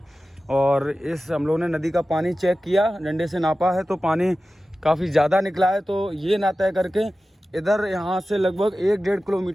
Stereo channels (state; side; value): normal; both; correlation 0.95